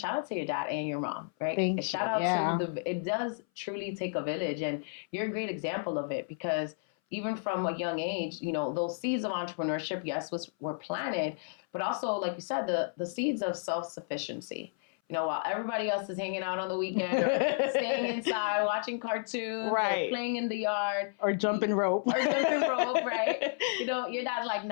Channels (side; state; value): right; silent; 57 dB below the other